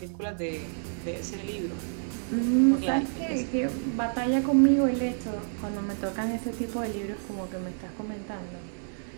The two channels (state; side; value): silent; left; digital silence